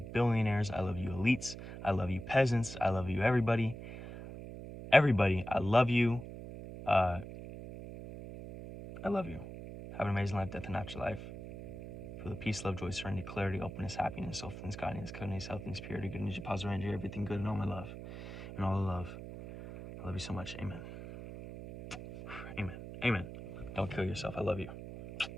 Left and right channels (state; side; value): noise; right; hum, 11 dB below the sound